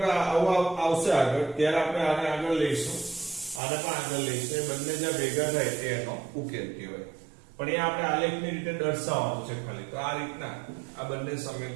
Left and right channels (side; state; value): left; drops out; at 3.6 s